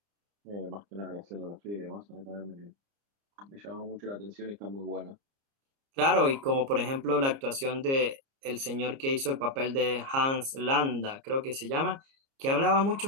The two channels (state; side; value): late; left; 30 ms